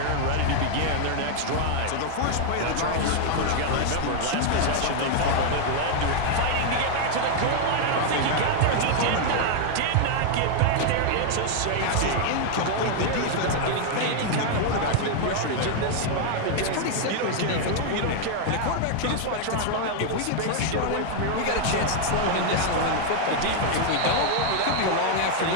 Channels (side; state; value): both; different; correlation 0.00